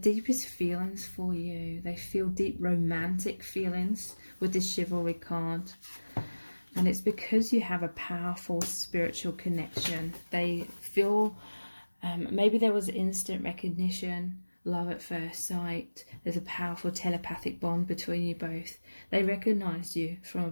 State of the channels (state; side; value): inverted; both; correlation -1.00